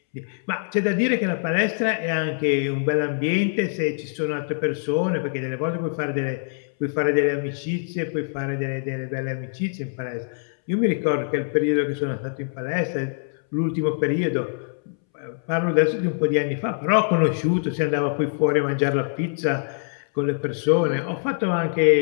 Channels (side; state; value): right; silent; 63 dB below the other